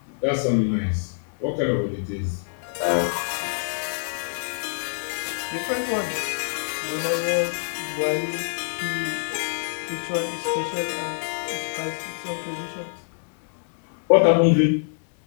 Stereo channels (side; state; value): right; silent; 62 dB below the other